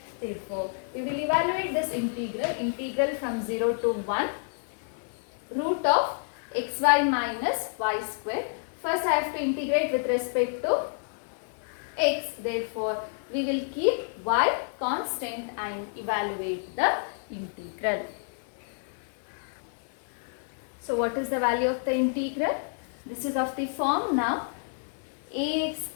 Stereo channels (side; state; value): right; silent; 58 dB below the other